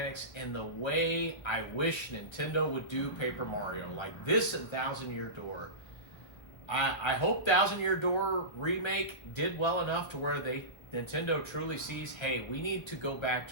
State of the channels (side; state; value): right; late; 1.6 ms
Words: and the way I wish Nintendo would do Paper Mario, like this and Thousand Year Door. I hope Thousand Year Door remake did well enough to where Nintendo truly sees, hey, we need to go back